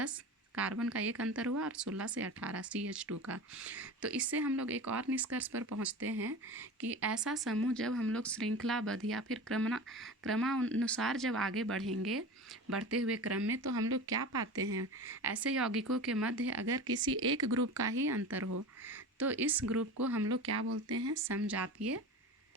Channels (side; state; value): both; normal; correlation 0.31